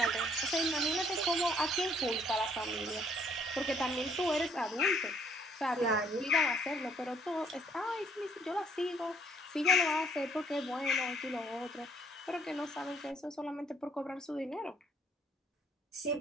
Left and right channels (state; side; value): normal; both; correlation 0.64